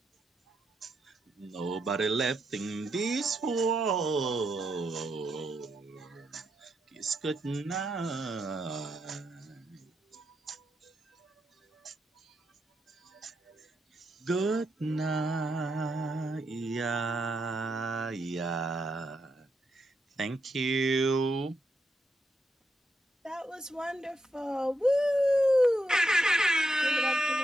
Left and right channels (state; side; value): normal; both; correlation 0.82